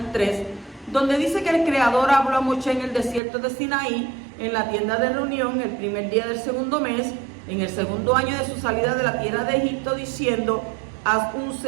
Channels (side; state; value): left; drops out; at 3.2 s